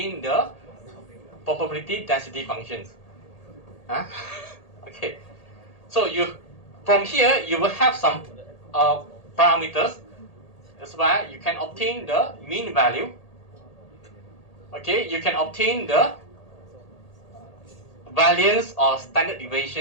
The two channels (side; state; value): right; late; 1.8 ms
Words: the probability density functions. Huh? Okay. So from here you will have some parameters is where you can obtain the mean value. Okay, you can obtain the variance or standard